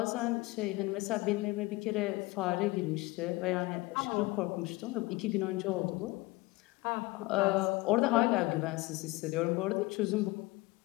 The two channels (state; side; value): quieter; right; 21.8 dB